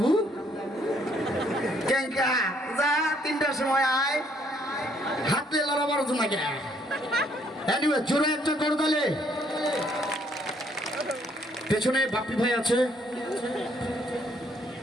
কেঙ্কা যা 3টার সময় আয়, হাতে লড়াবার জন্য গে। এনিওয়ে জোরে একটা করে দিলে। পেছনে বাপ্পি ভাই আছে,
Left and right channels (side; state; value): both; normal; correlation 0.67